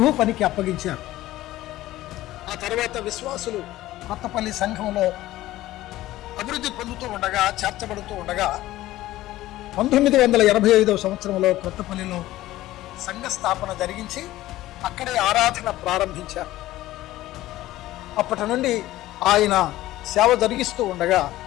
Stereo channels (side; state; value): right; quieter; 15.8 dB